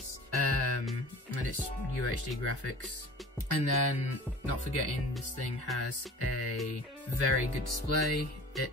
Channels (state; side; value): normal; both; correlation 0.41